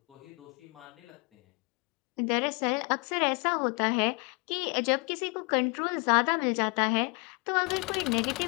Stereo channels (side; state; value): right; quieter; 31.9 dB